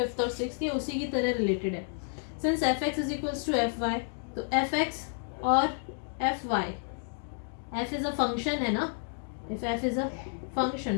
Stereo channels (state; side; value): silent; right; 57 dB below the other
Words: और सिक्स, ये उसी की तरह रिलेटेड है. Since f x is equals to F y, तो एफ एक्स और f y, f is a function है ना. If f is a